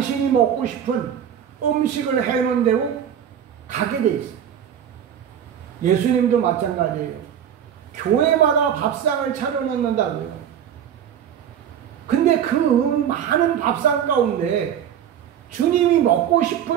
먹고 싶은 음식을 해놓은 대로 가게 돼 있어요. 예수님도 마찬가지예요. 교회마다 밥상을 차려놓는다고요. 근데 그 많은 밥상 가운데 주님이 먹고 싶은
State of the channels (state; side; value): quieter; left; 9.2 dB